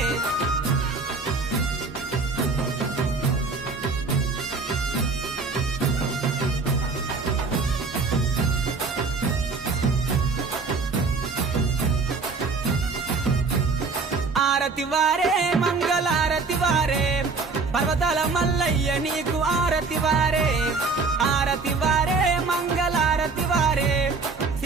ఆరతి వారే మంగళారతి వారే పర్వతాల మల్లయ్య నీకు ఆరతి వారే ఆరతి వారే మంగళారతి వారే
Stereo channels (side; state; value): left; quieter; 4.3 dB